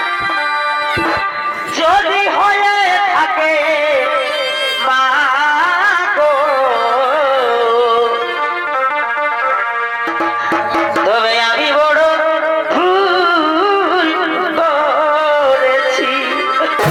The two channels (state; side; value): identical; both; correlation 1.00